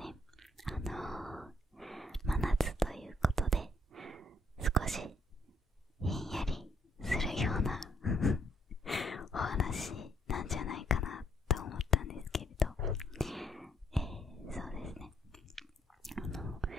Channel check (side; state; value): both; normal; correlation 0.70